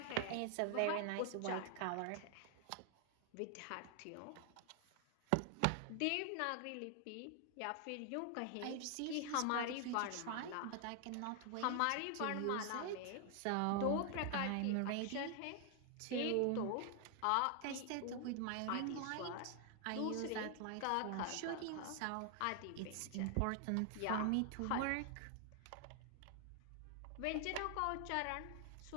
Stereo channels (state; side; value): different; both; correlation 0.00